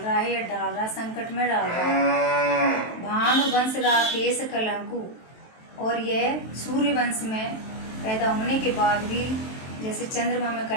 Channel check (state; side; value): late; right; 23 ms